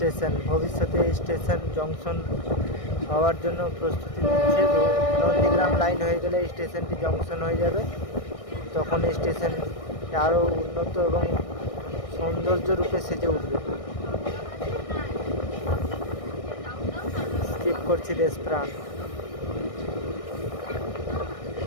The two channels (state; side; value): late; right; 1.6 ms